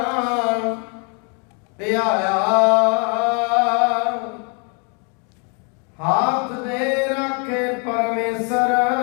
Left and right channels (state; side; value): quieter; right; 36.6 dB